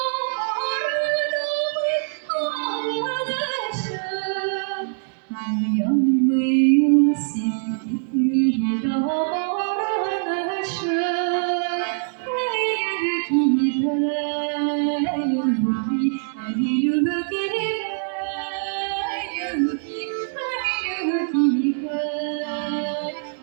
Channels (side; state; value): left; silent; digital silence